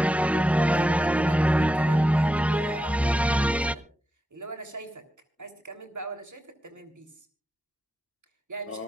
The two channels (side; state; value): both; normal; correlation 0.89